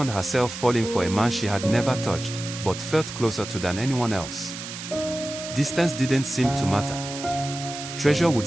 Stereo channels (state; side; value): noise; right; hiss, 9 dB below the sound